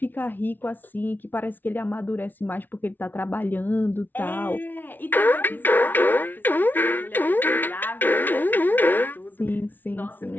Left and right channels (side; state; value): right; late; 0.089 ms